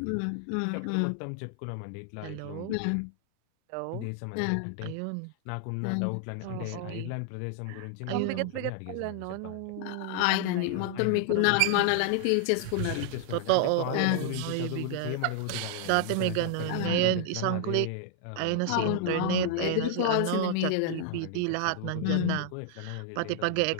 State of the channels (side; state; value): both; different; correlation 0.00